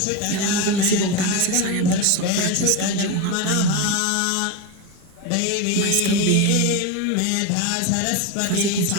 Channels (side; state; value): both; different; correlation 0.04